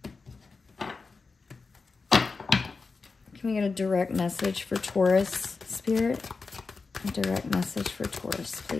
Can we get a direct message for Taurus spirit? A direct message for Taurus,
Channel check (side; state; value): right; quieter; 4.4 dB